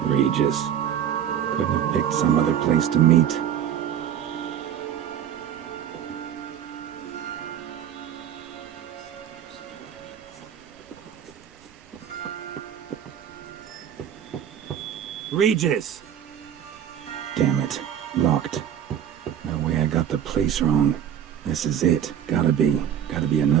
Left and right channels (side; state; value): left; quieter; 9.6 dB